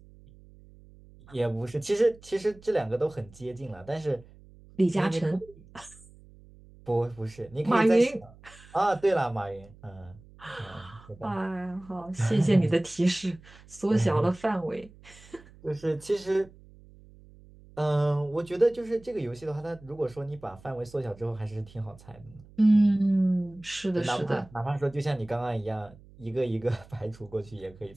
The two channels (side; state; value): right; noise; hum, 23 dB below the sound